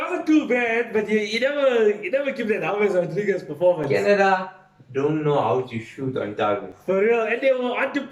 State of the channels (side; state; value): both; identical; correlation 1.00